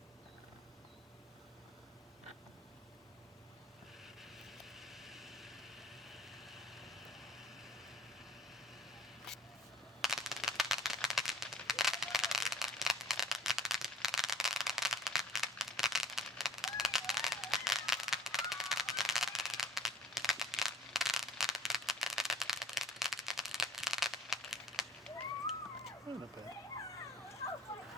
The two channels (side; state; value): both; normal; correlation 0.59